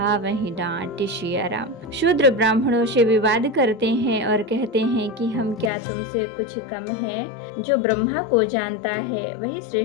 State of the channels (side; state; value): right; drops out; at 5.7 s